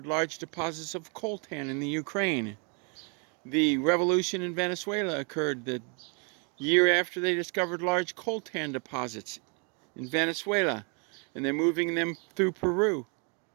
large deposits of coltan in the Ukraine. The revolution in Venezuela occurred the year after they discovered large coltan deposits in Venezuela, and they're moving them through Peru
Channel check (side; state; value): left; quieter; 35.8 dB